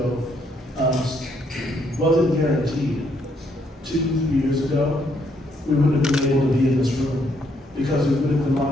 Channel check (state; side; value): normal; both; correlation 0.72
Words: wasn't guaranteed. 2-3 years ago, we wouldn't have been able to be in this room because we would have been